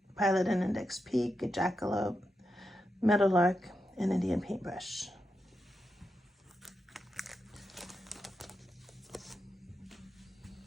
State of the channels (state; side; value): normal; both; correlation 0.87